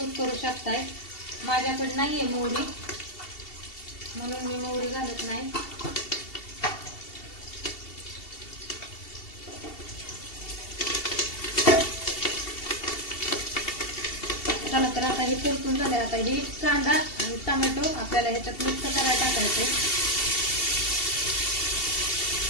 करू शकताय. माझ्याकडे नाहीये मोहरी, म्हणून मी मोहरी घालत नाही. चला तर आता हे परतून झाले. आता हे कांदा आणि टोमॅटो आपल्याला ह्याच्यात मिक्स करायला टाकायचे.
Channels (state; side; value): late; right; 2.7 ms